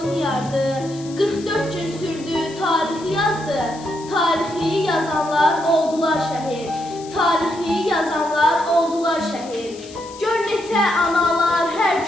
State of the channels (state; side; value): noise; left; hiss, 19 dB below the sound